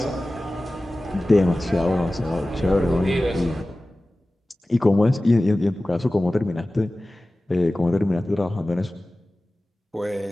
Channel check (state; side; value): normal; both; correlation 0.97